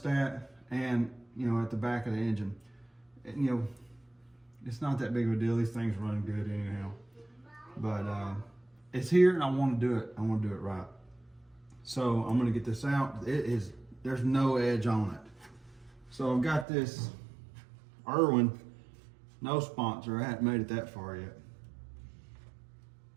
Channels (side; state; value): left; drops out; at 16.7 s